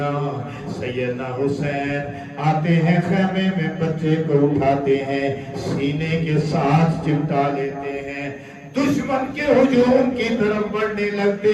سیدنا حسین آتے ہیں خیمے میں، بچے کو اٹھاتے ہیں، سینے کے ساتھ چمٹا لیتے ہیں، دشمن کے ہجوم کی طرف بڑھنے لگتے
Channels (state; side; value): identical; both; correlation 1.00